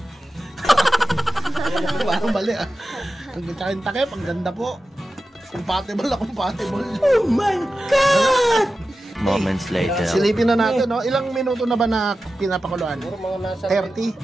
Parang mali ah. Ang tsaka takip, ang ganda po. Compatible na compatible. Oh my God! Moments later. Silipin na natin, no? Ilang minuto na ba na pinapakuluan? Puro mga nasa 30?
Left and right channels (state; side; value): normal; both; correlation 0.93